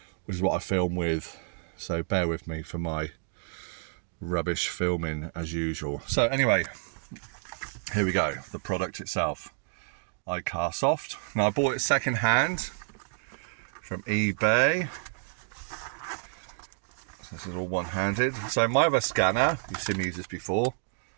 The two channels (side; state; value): left; silent; digital silence